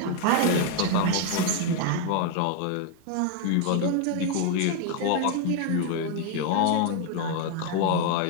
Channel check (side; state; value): both; different; correlation 0.00